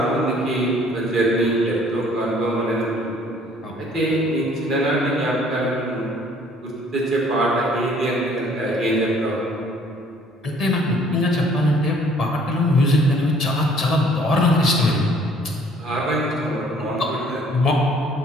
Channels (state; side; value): normal; both; correlation 0.58